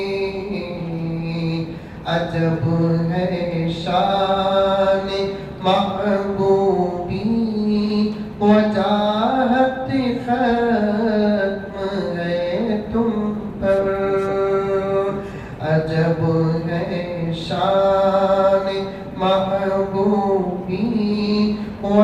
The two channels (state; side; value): identical; both; correlation 1.00